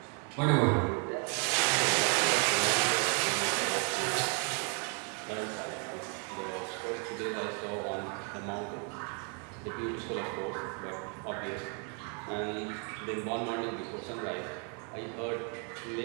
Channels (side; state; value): left; quieter; 34.9 dB